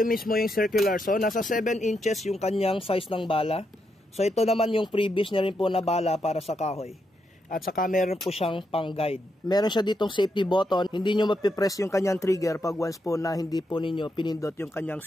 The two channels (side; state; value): both; normal; correlation 0.81